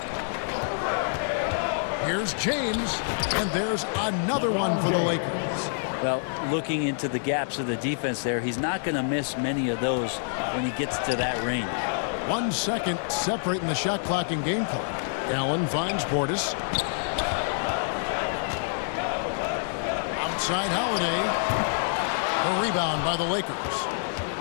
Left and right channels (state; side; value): silent; right; 60 dB below the other